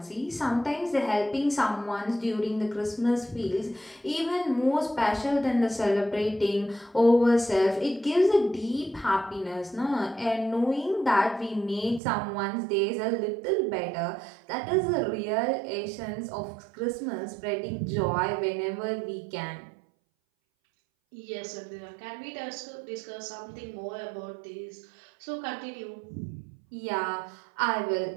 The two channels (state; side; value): drops out; left; at 12.0 s